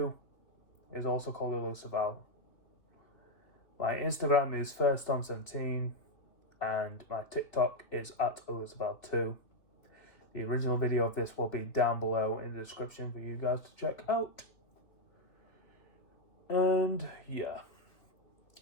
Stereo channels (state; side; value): late; right; 3.2 ms